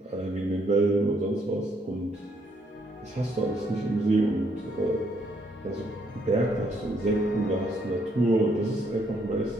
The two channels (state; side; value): normal; both; correlation 0.71